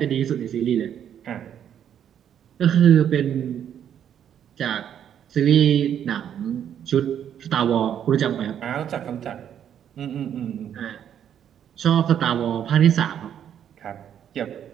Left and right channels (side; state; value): left; quieter; 9.4 dB